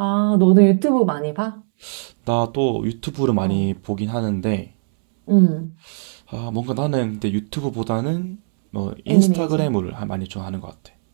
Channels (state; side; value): silent; left; 66 dB below the other